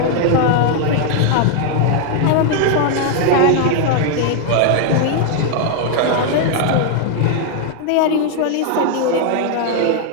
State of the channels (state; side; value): different; both; correlation 0.00